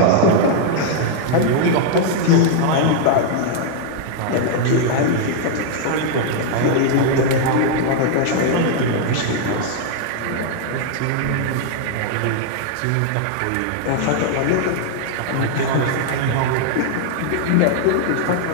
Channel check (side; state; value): both; different; correlation 0.00